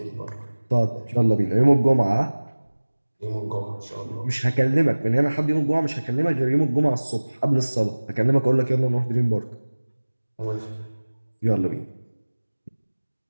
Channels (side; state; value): both; inverted; correlation -1.00